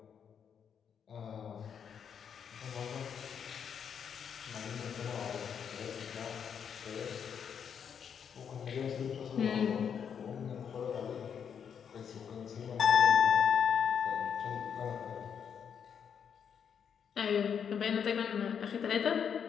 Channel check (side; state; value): right; quieter; 7.6 dB